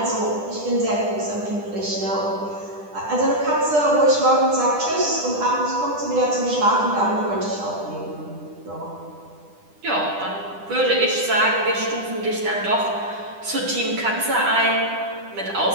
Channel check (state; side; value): late; left; 10 ms